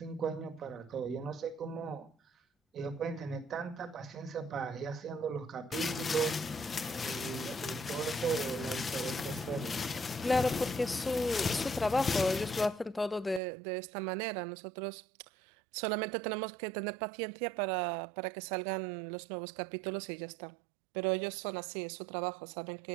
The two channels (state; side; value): drops out; left; at 13.4 s